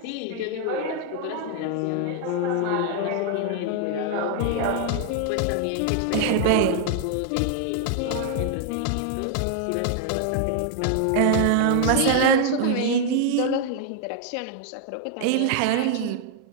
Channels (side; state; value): both; different; correlation 0.00